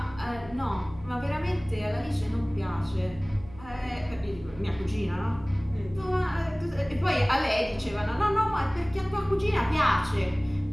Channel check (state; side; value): noise; right; hum, 19 dB below the sound